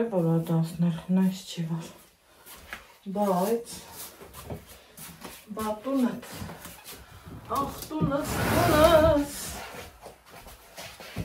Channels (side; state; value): both; identical; correlation 1.00